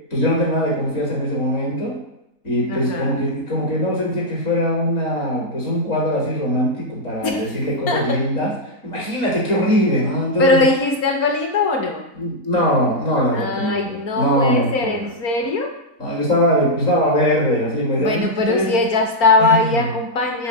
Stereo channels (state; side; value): late; right; 4.4 ms